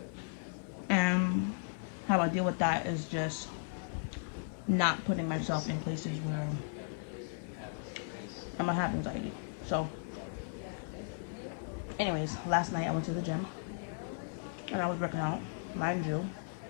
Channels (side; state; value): right; silent; digital silence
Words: And how I deal with that is just not putting myself in places where I'm gonna have anxiety. So, anyways, last night I went to the gym and I was working out. Mind you,